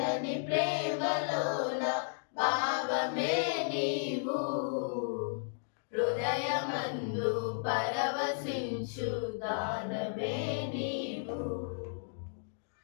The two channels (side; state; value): right; silent; digital silence